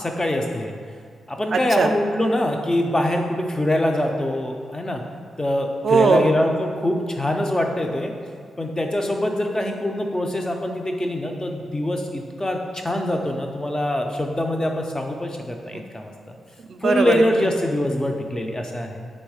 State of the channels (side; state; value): both; normal; correlation 0.88